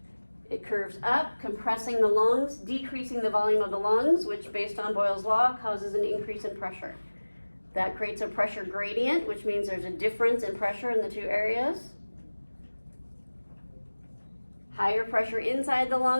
It curves up, compressing the lungs, decreasing the volume of the lungs, which based on Boyle's law causes an increase in pressure. That creates a pressure gradient, which means there's a difference in pressure in the two areas. Higher pressure inside the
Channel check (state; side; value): inverted; both; correlation -1.00